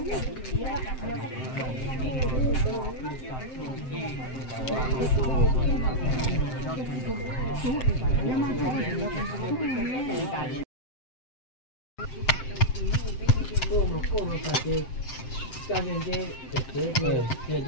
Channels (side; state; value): right; late; 7.7 ms